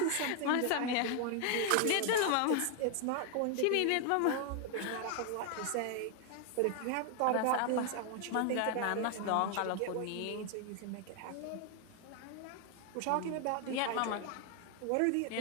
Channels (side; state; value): both; different; correlation 0.00